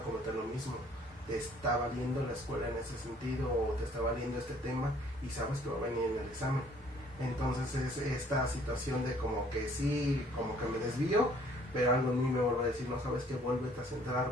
cometer lo mismo. Te está valiendo la escuela en ese sentido, o te está valiendo este tema y sabes que va a venir en el examen. Entonces es esta situación de como que sí, como que me desvío, pero algo en mí me vuelve a decir, no, sabes que vuélvete a centrar,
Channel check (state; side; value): normal; both; correlation 0.59